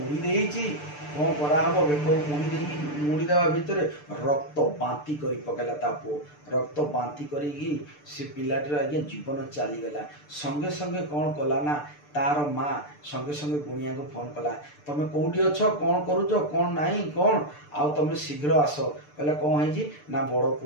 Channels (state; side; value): late; right; 6.8 ms